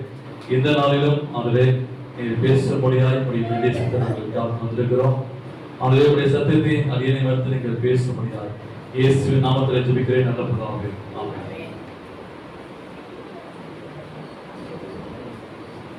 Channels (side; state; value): both; identical; correlation 1.00